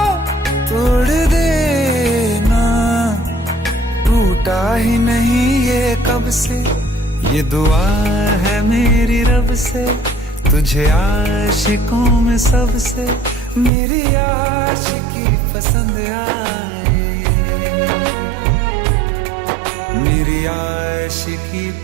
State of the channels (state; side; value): drops out; left; at 13.7 s